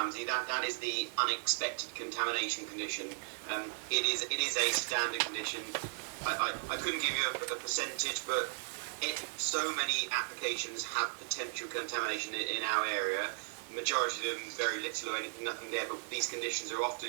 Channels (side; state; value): left; silent; 54 dB below the other